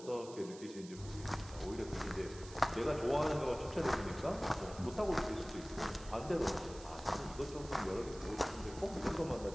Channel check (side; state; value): right; noise; hiss, 17 dB below the sound